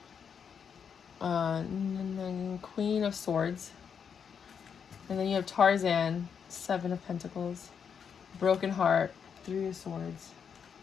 And then Queen of Swords. And then you have Tarzan, 7 of Pentacles. Broken Heart, 3 of Swords.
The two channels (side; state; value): right; quieter; 7.0 dB